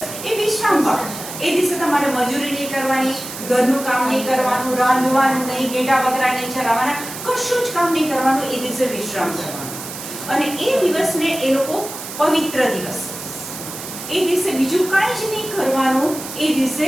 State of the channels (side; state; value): right; noise; hiss, 10 dB below the sound